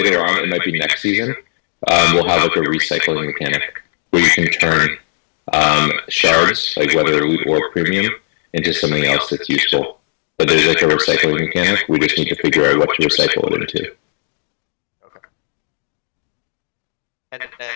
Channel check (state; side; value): silent; right; digital silence